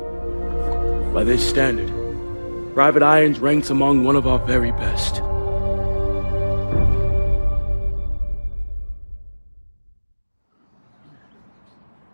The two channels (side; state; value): both; inverted; correlation -1.00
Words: By this standard, Private Irons ranks among one of our very best.